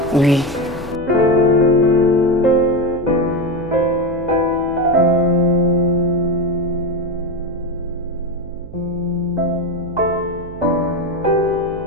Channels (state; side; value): noise; right; hum, 16 dB below the sound